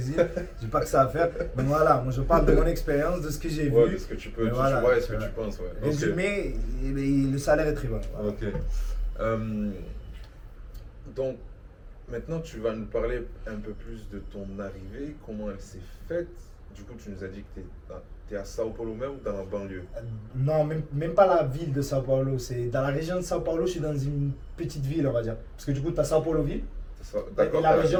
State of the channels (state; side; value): identical; both; correlation 1.00